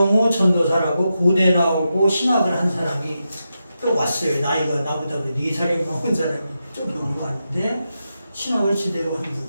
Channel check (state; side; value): inverted; both; correlation -0.88